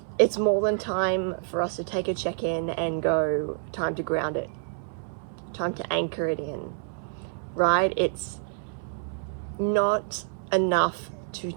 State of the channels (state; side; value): silent; left; 60 dB below the other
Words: it's more than time for us to take a check-in and go, time to ground it, time to anchor it in, right? It's not enough to